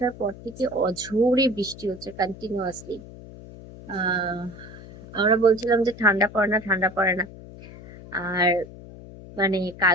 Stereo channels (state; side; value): noise; left; hum, 16 dB below the sound